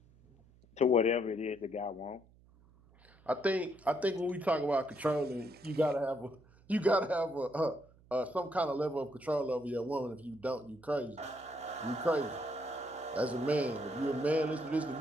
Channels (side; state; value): right; noise; hum, 27 dB below the sound